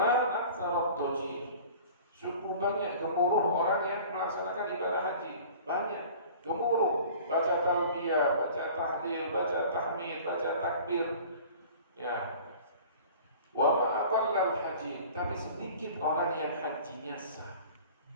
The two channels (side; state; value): both; inverted; correlation -0.44